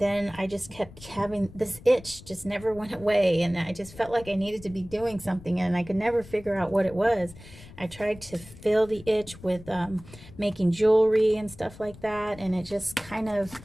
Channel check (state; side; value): noise; left; rumble, 19 dB below the sound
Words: I just kept having this itch, just never went away. And I just felt like I needed to be doing something, and I could never figure out what it was. I tried to fill the itch with making jewelry and stuff like that. And it just